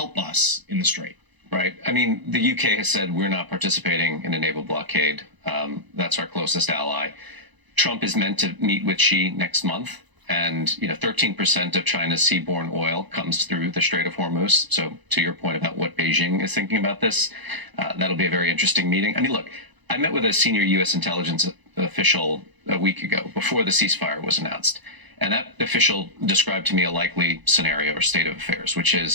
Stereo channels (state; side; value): late; left; 1.0 ms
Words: us in the strait. Right. I mean, the UK has said we're not participating in a naval blockade. That's our closest ally. Trump is meant to meet with Xi next month. And, 13% of China's seaborne oil comes through the Strait of Hormuz. So to your point about what Beijing is thinking about this, that'll be a very interesting meeting. I mean, look, I met with a senior U.S. intelligence official a week ago before the ceasefire was announced. And that official described to me a likely scenario or state of affairs, which